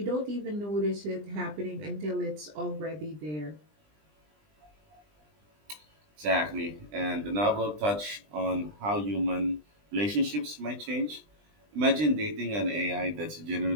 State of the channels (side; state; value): left; late; 20 ms